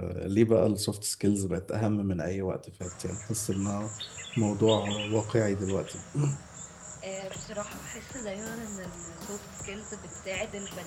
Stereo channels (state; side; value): identical; both; correlation 1.00